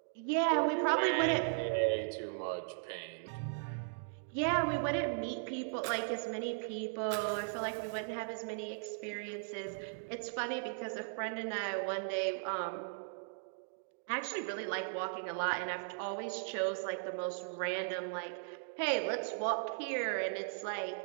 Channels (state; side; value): silent; left; digital silence